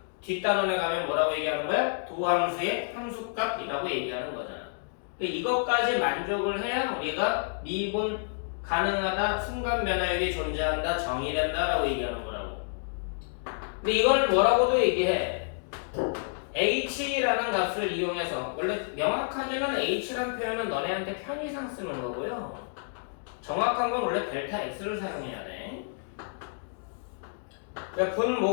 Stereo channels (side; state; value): right; silent; digital silence